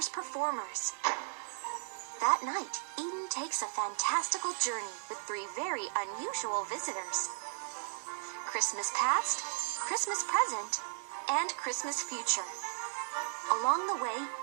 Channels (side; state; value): left; silent; digital silence